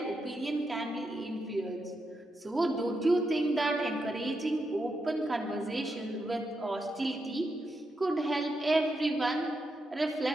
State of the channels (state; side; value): normal; both; correlation 0.84